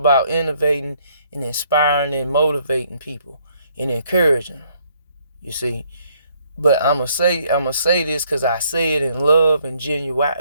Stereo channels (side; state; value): both; inverted; correlation -0.67